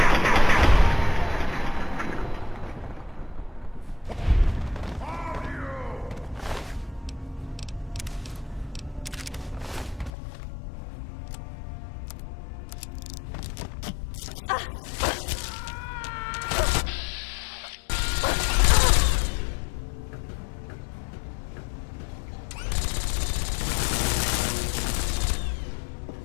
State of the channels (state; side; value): drops out; right; at 10.1 s